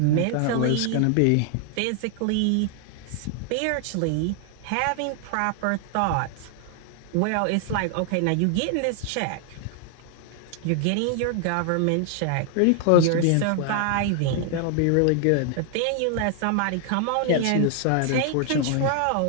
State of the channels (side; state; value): both; different; correlation 0.00